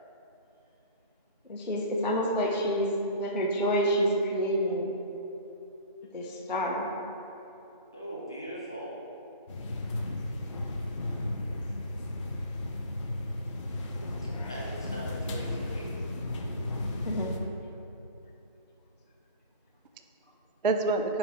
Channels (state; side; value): inverted; both; correlation -0.38